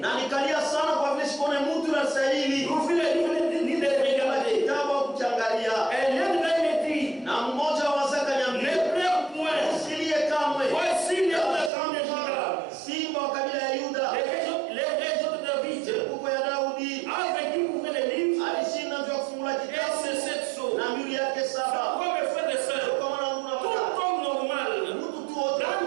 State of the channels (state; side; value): drops out; left; at 11.7 s